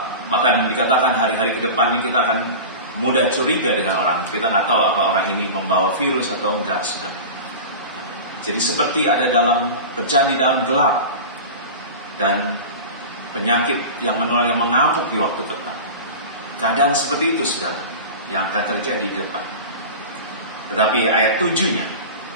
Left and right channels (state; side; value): inverted; both; correlation -0.30